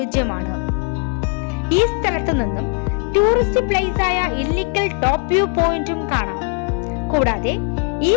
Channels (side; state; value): right; quieter; 38.7 dB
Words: ഈ സ്ഥലത്ത് നിന്നും ടൂറിസ്റ്റ് പ്ലേസ് ആയ ഇല്ലിക്കൽ ടോപ്പ് വ്യൂ പോയിന്റും കാണാം. കൂടാതെ ഈ